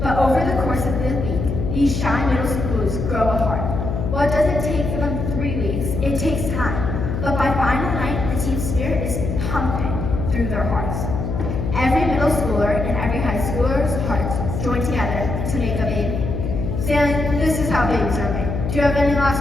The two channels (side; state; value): left; noise; hum, 3 dB below the sound